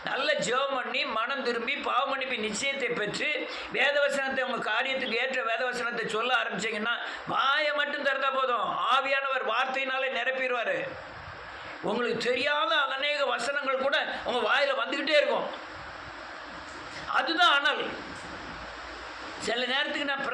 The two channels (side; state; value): both; identical; correlation 1.00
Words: நல்ல ஜெபம் பண்ணி மனம் திரும்பி பாவமன்னிப்பு நிச்சயத்தை பெற்று வேதவசனத்தை உங்கள் காரியத்துக்கு ஏற்ற வேதவசனத்தை சொல்ல ஆரம்பிச்சிங்கன்னா வாயை மட்டும் திறந்தா போதும், ஆவியானவர் வார்த்தையினாலே நிரப்பிடுவார். உங்களுக்கு தெரியாத அநேக வசனங்கள் கூட உங்கள் வாயில் வந்துக்கிட்டே இருக்கும். அதுதான் அனல். சில நேரத்துக்கு நான்